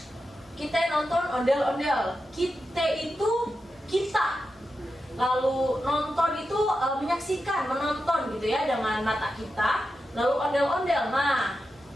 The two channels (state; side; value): normal; both; correlation 0.90